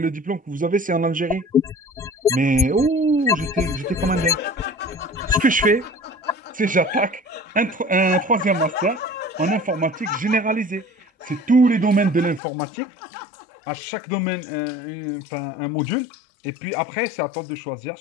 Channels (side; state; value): right; drops out; at 12.4 s